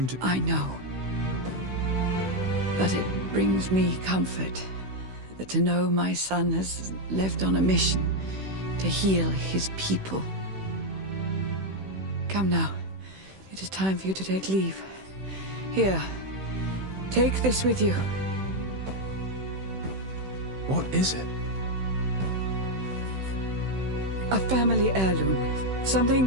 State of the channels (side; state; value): left; late; 16 ms